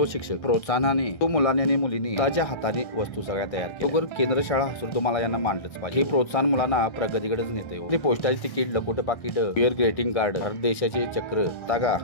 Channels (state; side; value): late; right; 1.6 ms